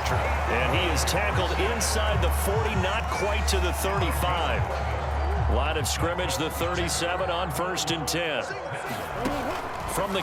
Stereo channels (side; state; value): both; identical; correlation 1.00